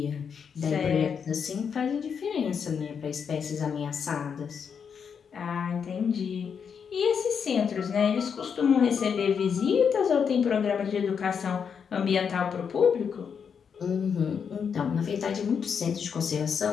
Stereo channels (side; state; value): right; quieter; 6.8 dB